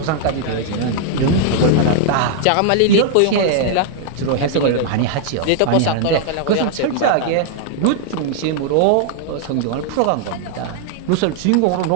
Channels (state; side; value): different; both; correlation -0.01